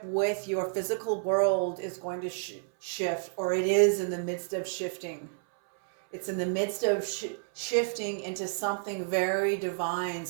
with your physical world is going to shift, or it is in the midst of shifting. It's in the midst of shifting into something very divine.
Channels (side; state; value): left; silent; 58 dB below the other